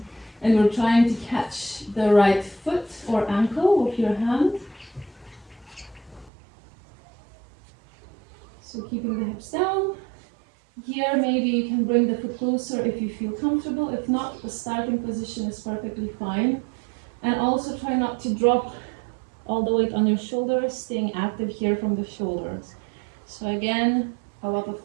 and we're trying to catch the right foot or ankle with your hand. So keeping the hips down. Here maybe you can bring the foot closer if you feel comfortable. If not, the starting position is perfectly fine. And also try not to drop all the weight on your shoulders, staying active here from the shoulders. So again, a lot of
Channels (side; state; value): left; drops out; at 6.3 s